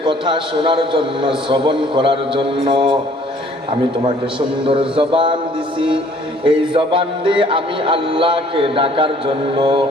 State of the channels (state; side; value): normal; both; correlation 0.58